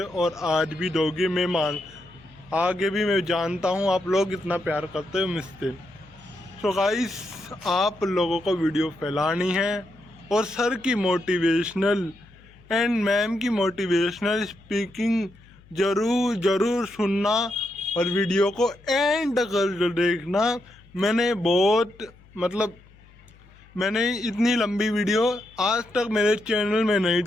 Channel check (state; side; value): noise; left; hum, 26 dB below the sound